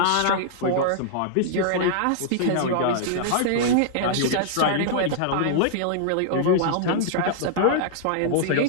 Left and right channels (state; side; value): different; both; correlation -0.01